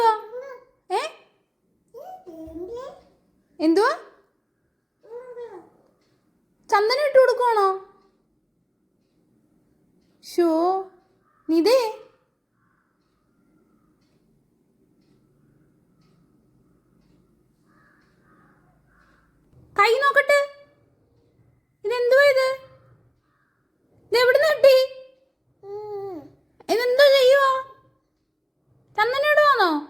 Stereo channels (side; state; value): both; identical; correlation 1.00